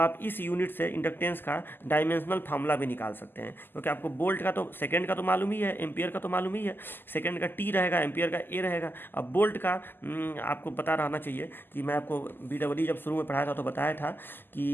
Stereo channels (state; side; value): late; right; 0.095 ms